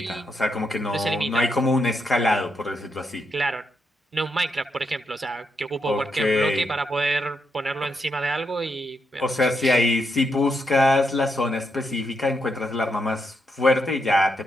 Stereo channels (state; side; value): normal; both; correlation 0.81